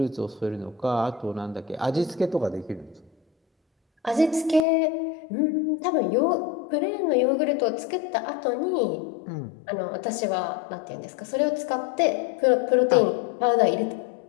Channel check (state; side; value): drops out; right; at 4.7 s